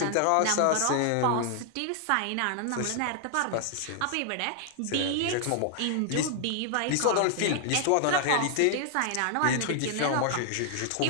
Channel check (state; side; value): different; both; correlation 0.00